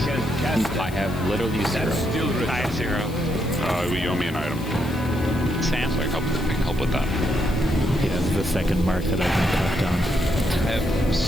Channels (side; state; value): left; noise; hiss, 19 dB below the sound